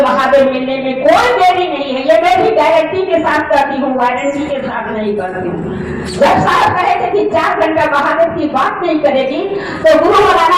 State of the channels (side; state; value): left; noise; rumble, 28 dB below the sound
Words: महादेव मिलने में कोई देरी नहीं है। ये मैं भी गारंटी के साथ करती हूँ, वारंटी के साथ नहीं करती हूँ। जब साहब कहे थे कि 4 घंटा महादेव की बात नहीं करेगी तो गुरु